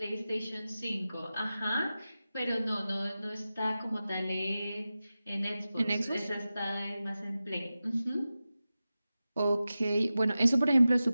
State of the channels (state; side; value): inverted; both; correlation -0.94